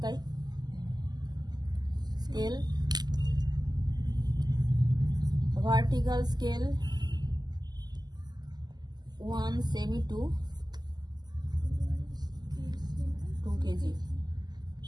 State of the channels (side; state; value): left; late; 0.20 ms